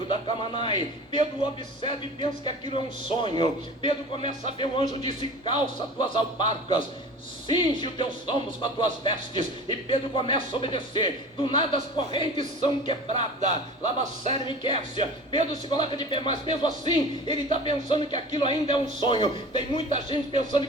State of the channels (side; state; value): both; normal; correlation 0.38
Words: da Camanai. Pedro observa e pensa que aquilo é um sonho. Pedro começa a ver, o anjo disse, calça tuas alparcas, cinge os teus ombros com as tuas vestes. E Pedro começa a obedecer. Do nada as correntes são quebradas. Lava Seremenequécia. Pedro se coloca de pé, mas mesmo assim ele está pensando que aquilo ainda é um sonho. Tem muita gente pensando